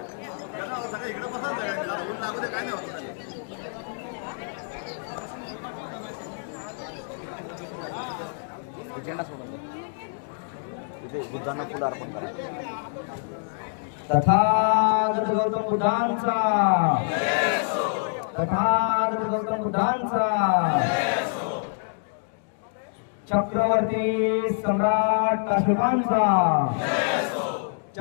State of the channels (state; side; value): silent; right; digital silence